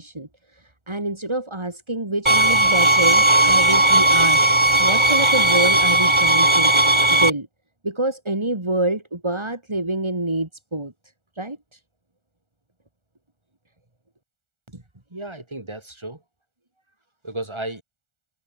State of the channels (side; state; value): left; late; 1.4 ms